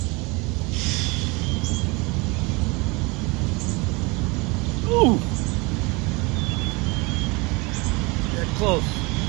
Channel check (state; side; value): quieter; left; 26.5 dB